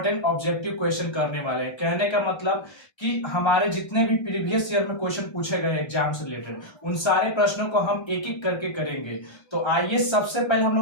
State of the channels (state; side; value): late; right; 1.3 ms